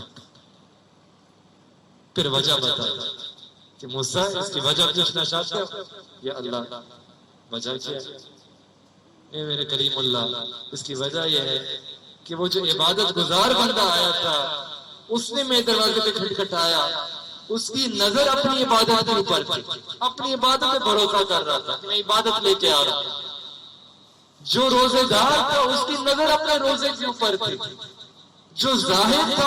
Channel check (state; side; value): identical; both; correlation 1.00